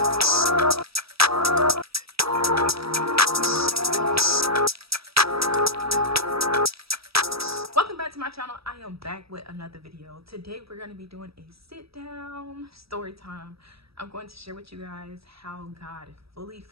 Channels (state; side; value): late; left; 0.77 ms